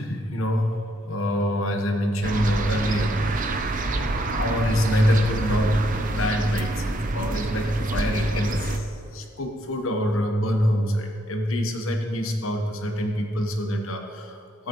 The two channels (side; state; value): both; normal; correlation 0.74